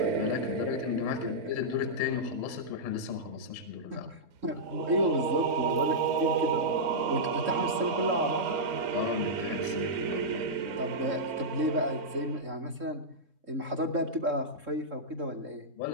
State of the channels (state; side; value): late; left; 3.7 ms